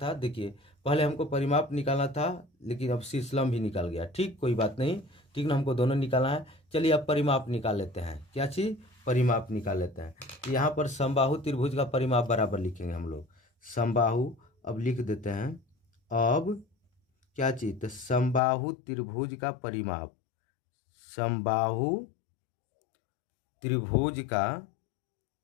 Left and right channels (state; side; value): drops out; right; at 18.4 s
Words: देखिए पहले हमको परिमाप निकालना था लेकिन अब शीर्ष लंब भी निकाल गया। ठीक, कोई बात नहीं, ठीक ना, हमको दोनों निकालना है। चलिए अब परिमाप निकाल लेते हैं, क्या चीज़, परिमाप निकाल लेते हैं। तो यहाँ पर समबाहु त्रिभुज का परिमाप बराबर लिखेंगे हम लोग, समबाहु अब लिख देते हैं। अब क्या चीज़, तो समबाहु त्रिभुज का परिमाप, समबाहु त्रिभुज